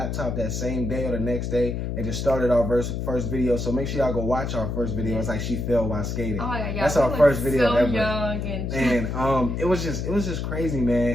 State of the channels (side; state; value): left; noise; hum, 3 dB below the sound